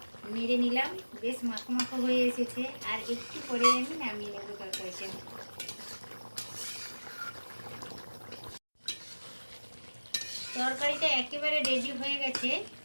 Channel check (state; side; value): inverted; both; correlation -1.00